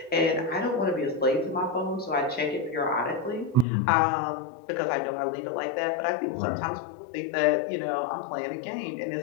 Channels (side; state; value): right; drops out; at 3.7 s